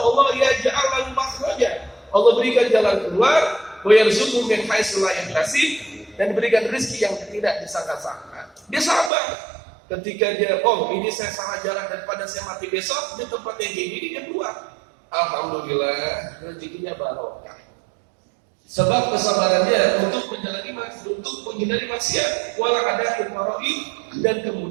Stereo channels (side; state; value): left; drops out; at 9.1 s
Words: yaj'al lahu makhraja, Allah berikan jalan keluar wa yarzuqhu min haitsu la yahtasib, dan diberikan rezeki yang tidak disangka-sangka. Dia sabar. Ketika dia, oh ini saya salah jalan daripada saya mati besok di tempat yang kayak gini, dia keluar. Alhamdulillah rezekinya barokah. Sebab kesabarannya untuk menghindari maksiat, wala ada faraid, dan